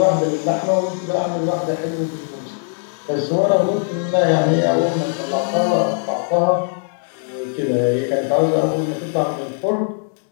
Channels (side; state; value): right; silent; 65 dB below the other